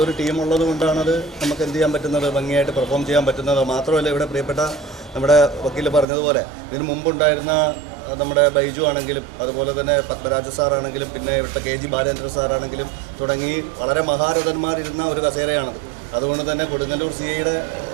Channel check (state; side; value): drops out; left; at 6.1 s